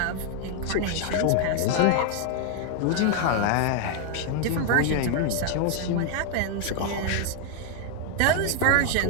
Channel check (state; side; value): different; both; correlation 0.00